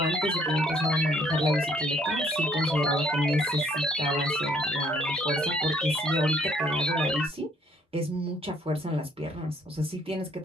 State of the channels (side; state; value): both; normal; correlation 0.64